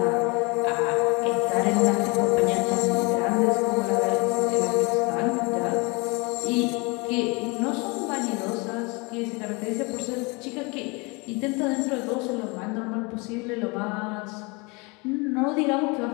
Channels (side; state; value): right; quieter; 28.2 dB